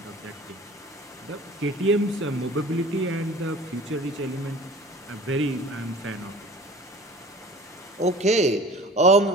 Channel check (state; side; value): normal; both; correlation 0.43